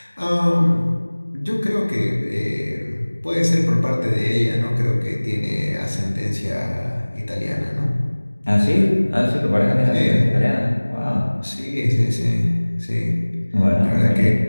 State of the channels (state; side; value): inverted; both; correlation -1.00